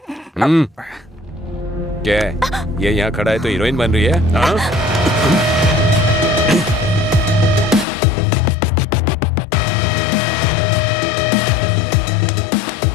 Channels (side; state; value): right; drops out; at 7.9 s